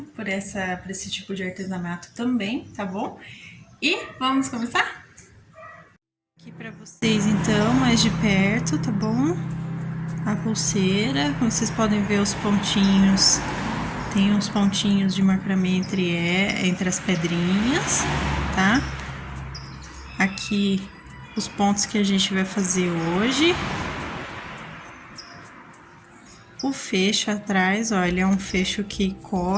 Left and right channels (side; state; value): both; identical; correlation 1.00